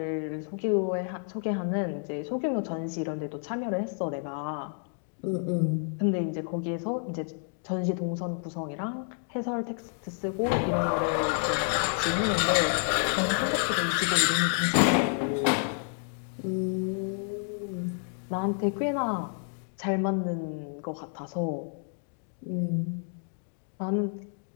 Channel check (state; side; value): silent; right; 57 dB below the other